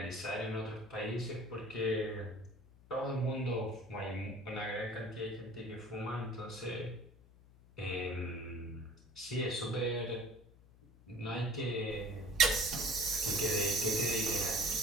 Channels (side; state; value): left; noise; hum, 24 dB below the sound